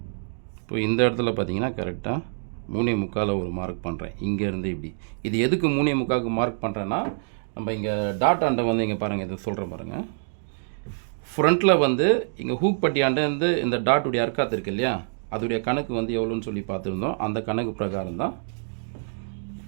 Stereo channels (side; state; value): left; silent; digital silence